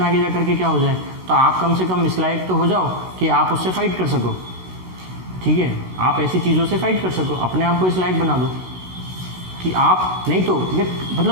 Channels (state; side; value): late; left; 16 ms